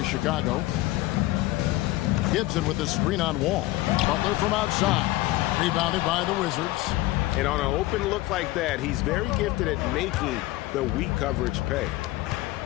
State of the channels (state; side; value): quieter; right; 18.2 dB